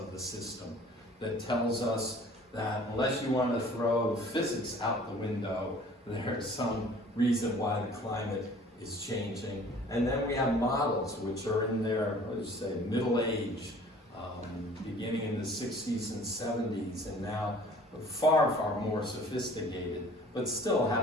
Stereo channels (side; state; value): both; normal; correlation 0.50